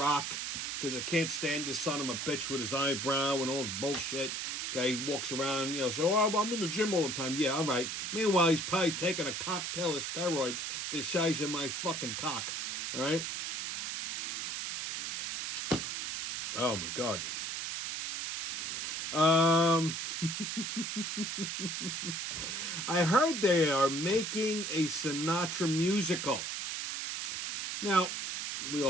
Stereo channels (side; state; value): right; noise; hiss, 3 dB below the sound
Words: because I can't stand this son of a bitch with his eyebrow and all his bullshit. Okay, he walks around, so I'm in the gym all the time. Yeah, all right. Meanwhile, he's probably taking a cocktail of steroids the size of my fucking cock. All right? Oh, my God. I heard they are making a Sinatra musical. Now, we